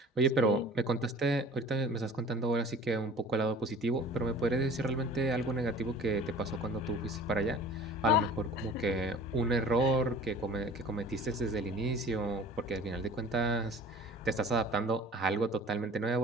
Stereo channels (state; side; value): normal; both; correlation 0.44